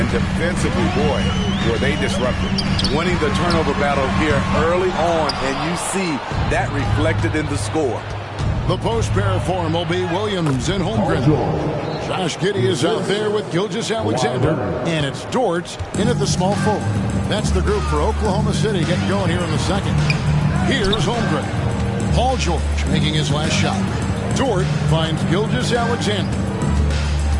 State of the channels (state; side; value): identical; both; correlation 1.00